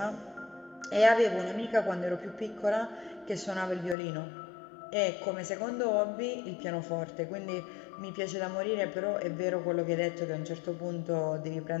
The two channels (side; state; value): right; drops out; at 4.0 s